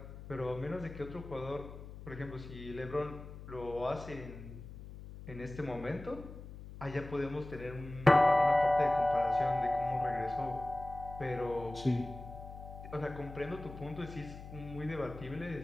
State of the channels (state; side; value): noise; left; hum, 13 dB below the sound